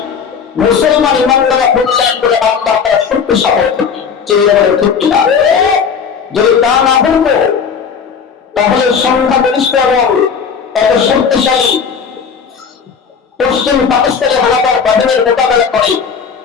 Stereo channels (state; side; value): quieter; right; 6.4 dB